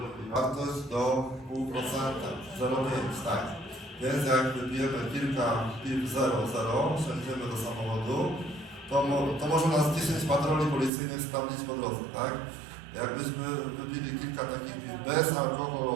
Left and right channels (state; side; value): drops out; left; at 10.9 s